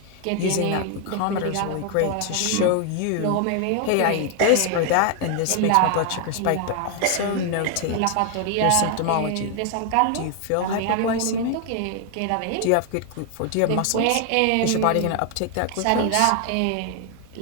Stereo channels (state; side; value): different; both; correlation 0.00